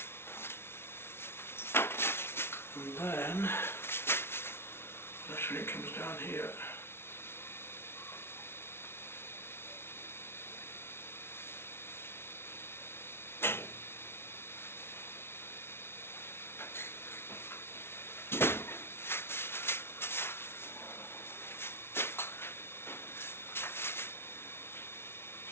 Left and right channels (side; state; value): right; late; 0.12 ms